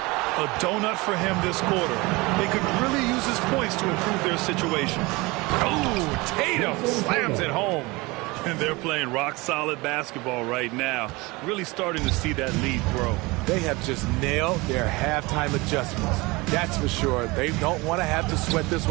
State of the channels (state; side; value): quieter; left; 23.6 dB